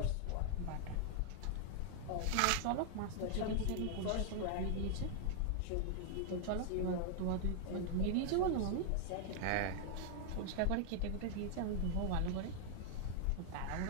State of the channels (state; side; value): different; both; correlation 0.00